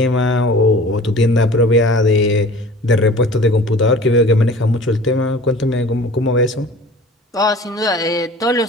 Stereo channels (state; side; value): normal; both; correlation 0.44